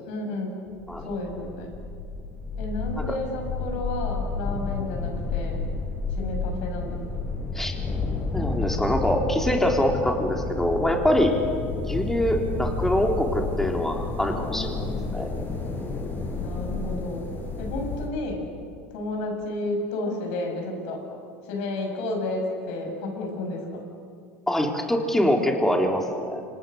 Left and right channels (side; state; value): both; normal; correlation 0.64